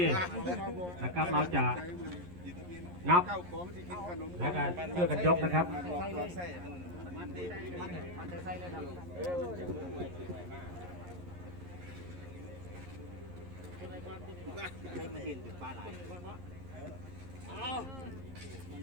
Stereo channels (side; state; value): left; late; 11 ms